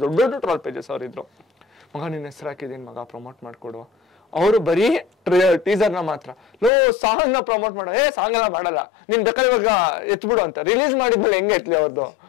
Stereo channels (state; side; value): drops out; right; at 6.7 s